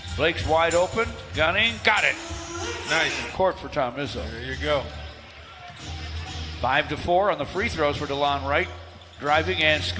Blake's wide open. Gunning. Got it. Nice. Court for Tom Izzo. There you go. 5-4 on the free throws for DeLon Wright. Driving and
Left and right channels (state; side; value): identical; both; correlation 1.00